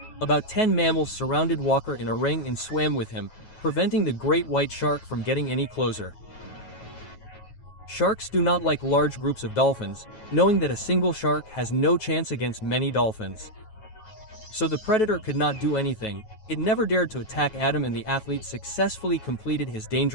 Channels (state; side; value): late; right; 9.3 ms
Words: About 10 mammals surrounded Walker in a ring and swam with him, preventing the great white shark from getting any closer. Sharks do not like large groups of dolphins, knowing that a single shark has no chance against many dolphins. So the predator could not do anything. It never dared to attack Adam, and the athlete successfully completed his